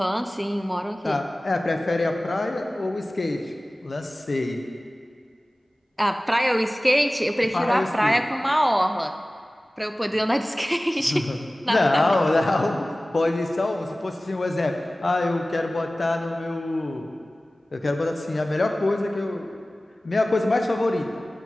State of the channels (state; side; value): normal; both; correlation 0.97